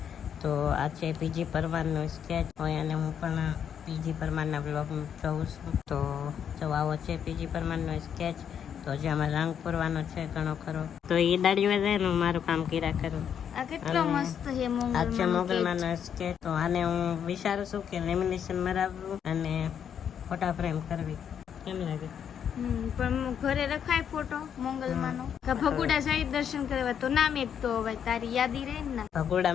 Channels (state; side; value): quieter; right; 8.4 dB